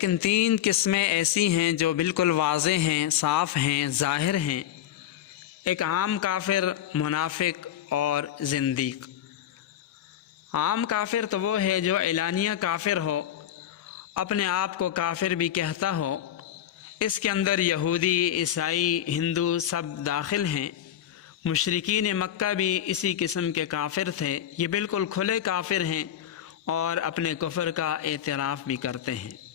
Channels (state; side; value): quieter; right; 11.0 dB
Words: 3 قسمیں ایسی ہیں جو بالکل واضح ہیں، صاف ہیں، ظاہر ہیں۔ ایک عام کافر، منافق اور زندیق۔ عام کافر تو وہ ہے جو اعلانیہ کافر ہو، اپنے آپ کو کافر بھی کہتا ہو۔ اس کے اندر یہودی، عیسائی، ہندو سب داخل ہیں۔ مشرکین مکہ بھی اسی قسم کے کافر تھے۔ یہ بالکل کھلے کافر ہیں اور اپنے کفر کا اعتراف بھی کرتے ہیں۔